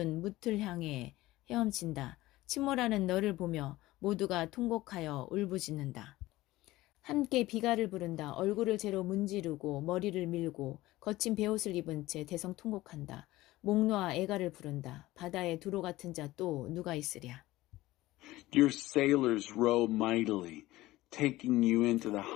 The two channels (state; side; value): quieter; right; 17.6 dB